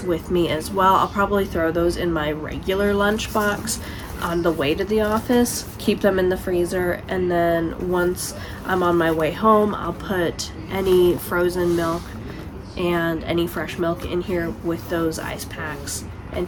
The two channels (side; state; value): both; identical; correlation 1.00